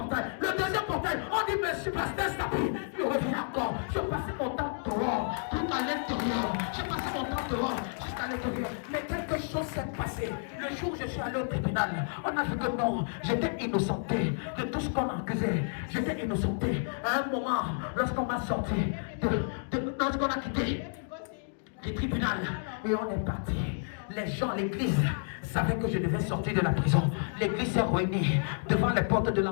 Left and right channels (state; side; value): silent; right; digital silence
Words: Le deuxième portail, on dit: monsieur pasteur s'habille. Je reviens encore. Je passais mon temps dehors, tout à l'intérieur. J'ai passé mon temps dehors, jusqu'à l'intérieur. Mais quelque chose s'est passé. Le jour où je suis allé au tribunal, on a dit que non, j'étais innocenté de tout ce qu'on accusait. J'étais innocenté. À un moment, lorsqu'on m'a sorti, lorsqu'on a quitté du tribunal et on est parti, les gens, l'église savaient que je devais sortir de la prison. L'église s'est réunie devant les portes de